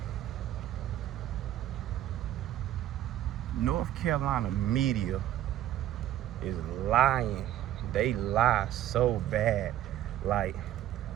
North Carolina media is lying. They lie so bad. Like,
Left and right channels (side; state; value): left; quieter; 12.6 dB